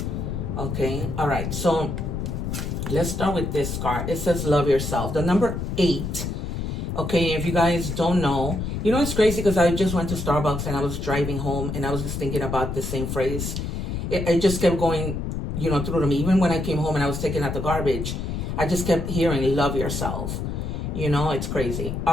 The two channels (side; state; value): left; noise; rumble, 3 dB below the sound